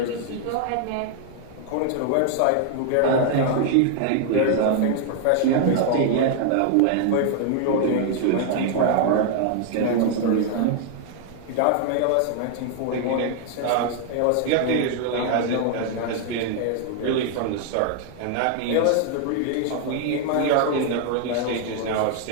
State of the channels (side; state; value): both; different; correlation 0.00